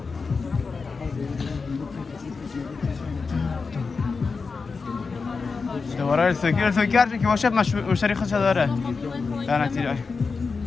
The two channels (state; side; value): quieter; right; 4.7 dB